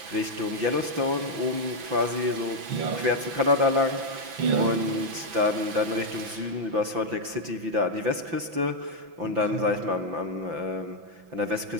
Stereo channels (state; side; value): late; left; 5.9 ms